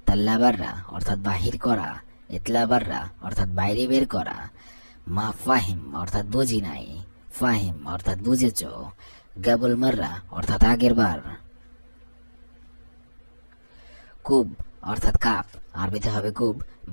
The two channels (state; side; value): inverted; both; correlation -1.00